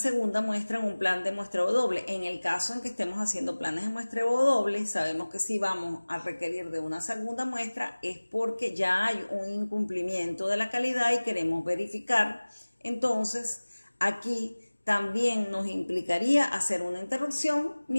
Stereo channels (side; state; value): both; inverted; correlation -1.00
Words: muestra en un plan de muestreo doble. En el caso en que estemos haciendo planes de muestreo doble, sabemos que si vamos a requerir de una segunda muestra es porque ya hay un incumplimiento de la calidad y queremos verificar Entonces, aquí también nos implicaría hacer una interrupción